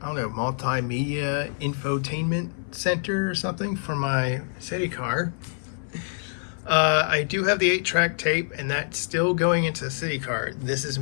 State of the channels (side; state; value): right; silent; 57 dB below the other